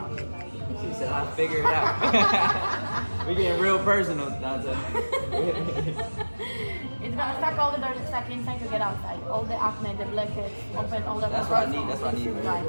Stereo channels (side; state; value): both; inverted; correlation -1.00